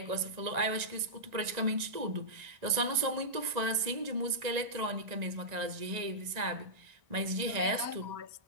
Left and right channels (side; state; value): left; late; 1.9 ms